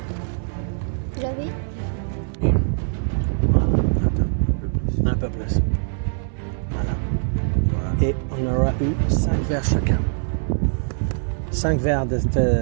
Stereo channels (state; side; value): silent; left; digital silence